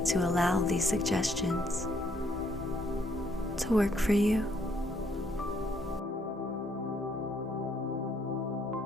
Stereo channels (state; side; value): normal; both; correlation 0.69